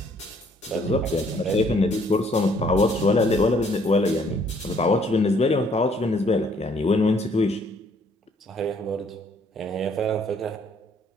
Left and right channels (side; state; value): both; normal; correlation 0.64